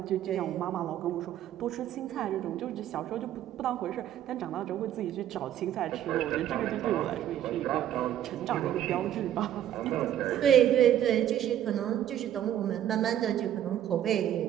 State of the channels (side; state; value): left; quieter; 11.3 dB